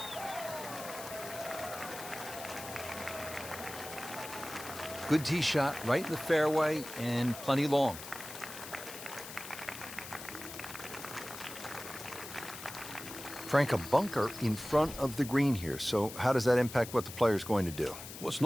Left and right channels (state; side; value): noise; left; hiss, 11 dB below the sound